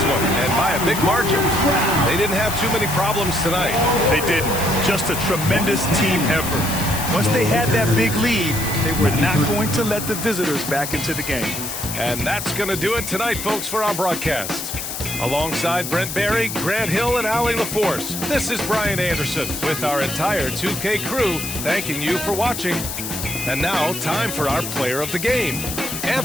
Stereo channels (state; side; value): noise; left; hiss, 6 dB below the sound